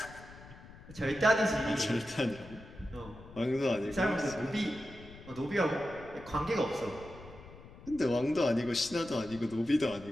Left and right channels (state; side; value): noise; left; rumble, 18 dB below the sound